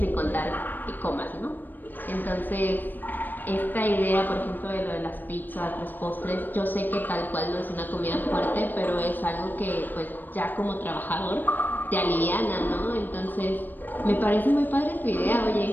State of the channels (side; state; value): right; late; 0.090 ms